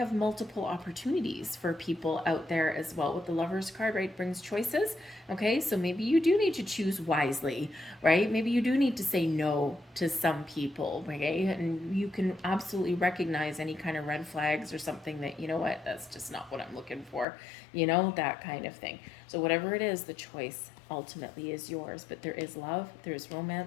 multiple opportunities for people out there as well. With the Lovers card, right, brings choices. Okay, so maybe you do need to choose wisely, right? Maybe you do need to say no to some people, okay? And you can absolutely recognize any kind of red flags or something that, you know what, that's just not what I'm looking for, you know, that kind of thing. So whatever it is, the choice ultimately is yours. But there is love, there's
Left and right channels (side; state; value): right; drops out; at 17.2 s